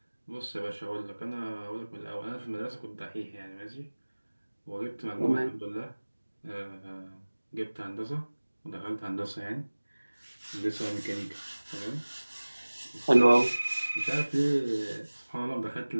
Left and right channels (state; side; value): inverted; both; correlation -1.00